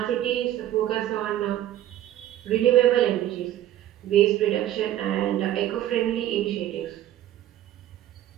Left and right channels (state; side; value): quieter; left; 12.7 dB